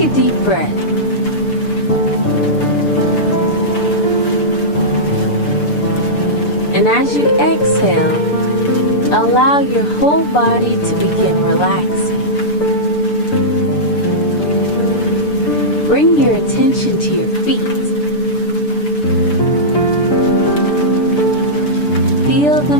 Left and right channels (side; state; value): right; late; 6.8 ms